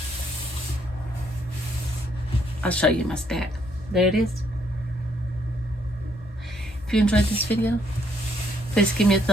I'll show you my stack. There it is. If you enjoyed this video, please give me a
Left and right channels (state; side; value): normal; both; correlation 0.70